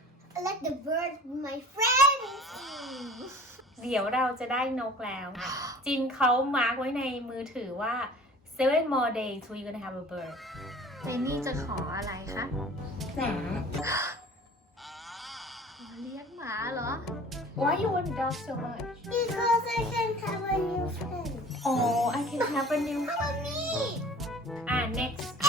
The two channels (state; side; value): normal; both; correlation 0.45